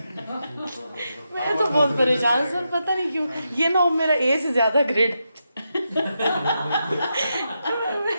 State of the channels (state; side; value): inverted; both; correlation -0.86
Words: मैं तो बहुत परेशान हूँ सर, पता नहीं क्यों. ये ना हो मेरा ए से ज्यादा ग्रेड.